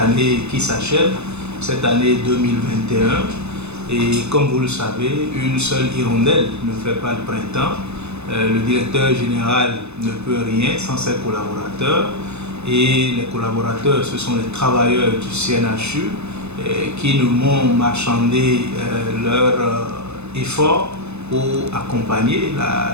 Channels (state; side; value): late; left; 0.81 ms